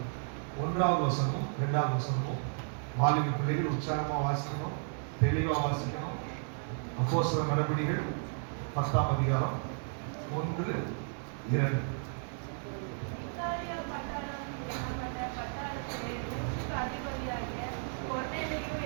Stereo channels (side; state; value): left; silent; 55 dB below the other